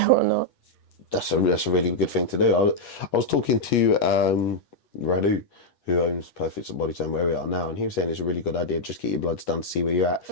or not. That's a really good thing to do. I was talking to Radu, who owns Perfect Body Time, where we are now, and he was saying it's a really good idea. Just get your bloods done to see where you're at.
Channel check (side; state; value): right; late; 8.3 ms